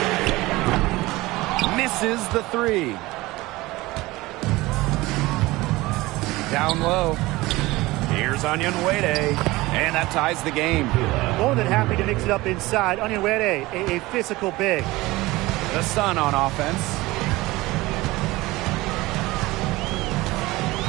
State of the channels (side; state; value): left; quieter; 20.0 dB